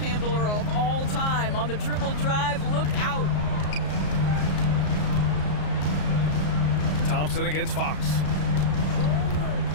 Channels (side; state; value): right; late; 33 ms